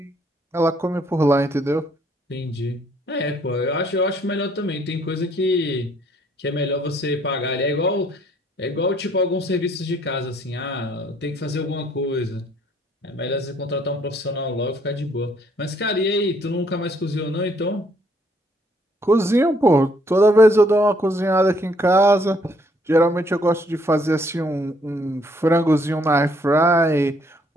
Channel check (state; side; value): normal; both; correlation 0.66